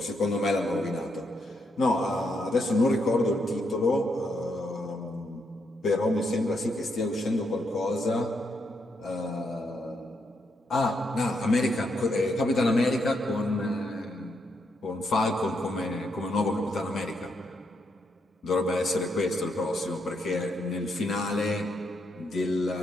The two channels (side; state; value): both; normal; correlation 0.79